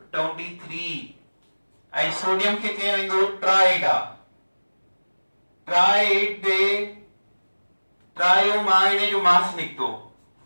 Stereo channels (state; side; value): inverted; both; correlation -1.00